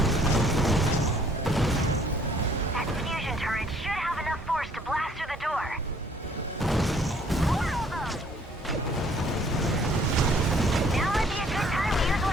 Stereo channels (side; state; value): both; normal; correlation 0.60